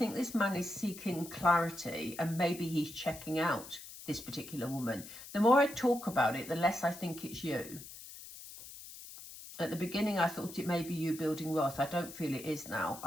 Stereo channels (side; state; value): left; noise; hiss, 14 dB below the sound